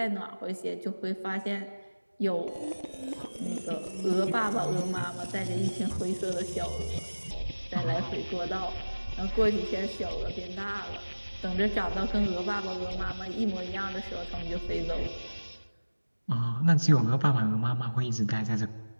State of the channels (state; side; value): inverted; both; correlation -1.00